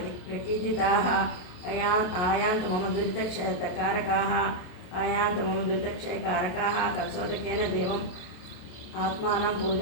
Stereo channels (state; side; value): late; right; 28 ms